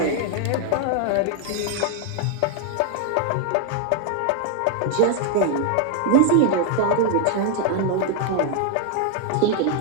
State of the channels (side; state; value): both; different; correlation 0.00